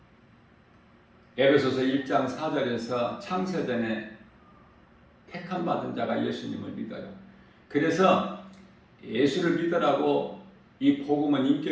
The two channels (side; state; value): both; identical; correlation 1.00